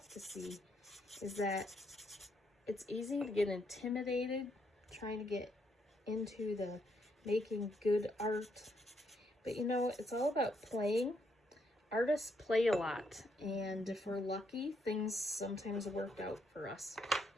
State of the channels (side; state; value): both; normal; correlation 0.75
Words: to see, is that it's easy to get intimidated trying to get into the making good art. But you know, it's all about playing. Artists play a lot, and if we're lucky, things sometimes work out for us.